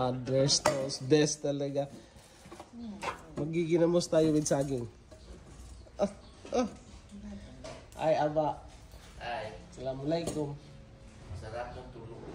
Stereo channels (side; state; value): both; identical; correlation 1.00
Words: toast. Best talaga. Magiginamos tayo with saging. Ay, aba. Ay. Assalamualaikum. Sarap ng tulog.